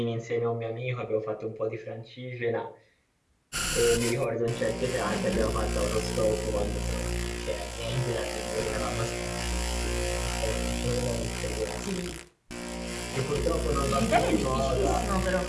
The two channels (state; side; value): identical; both; correlation 1.00